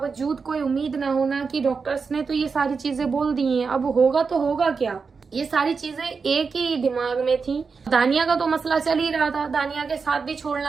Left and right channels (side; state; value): left; quieter; 5.1 dB